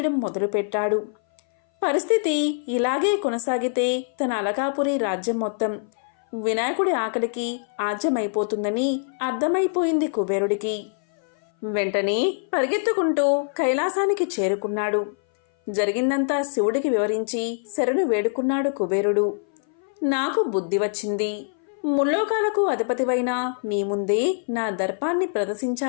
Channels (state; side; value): silent; right; 59 dB below the other